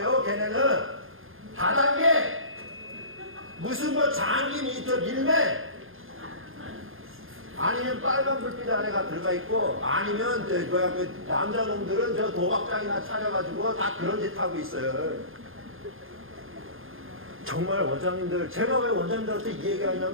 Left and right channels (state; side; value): late; left; 0.60 ms